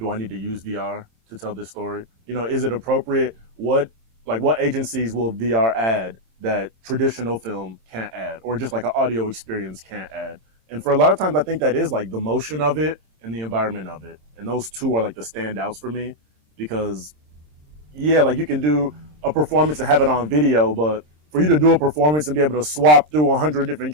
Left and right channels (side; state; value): left; late; 26 ms